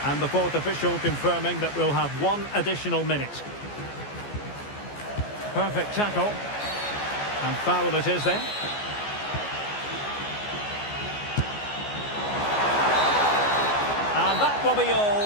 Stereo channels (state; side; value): late; right; 14 ms